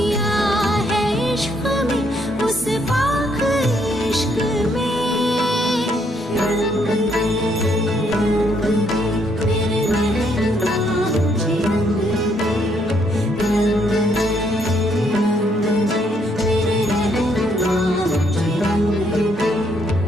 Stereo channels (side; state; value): both; normal; correlation 0.71